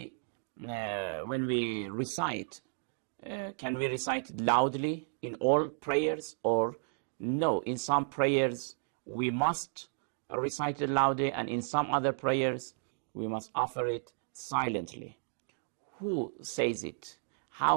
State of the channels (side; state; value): left; silent; digital silence